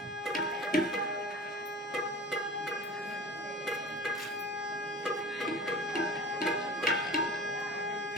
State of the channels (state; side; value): normal; both; correlation 0.39